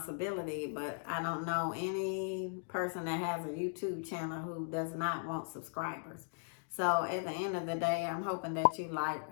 but I don't know any person that has a YouTube channel who does not want subscribers. So at the end of the day, I'm hoping that you like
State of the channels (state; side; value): silent; right; digital silence